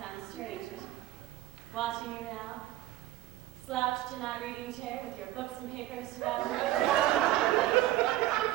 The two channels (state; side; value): quieter; left; 15.0 dB